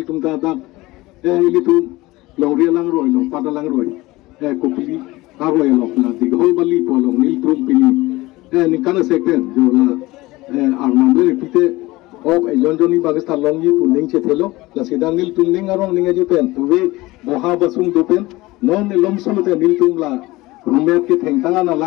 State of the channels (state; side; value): quieter; right; 20.0 dB